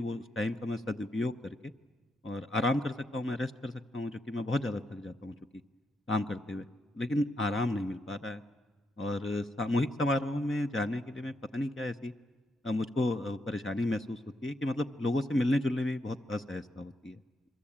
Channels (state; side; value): normal; both; correlation 0.80